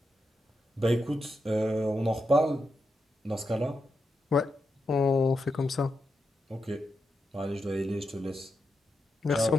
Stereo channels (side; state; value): both; normal; correlation 0.86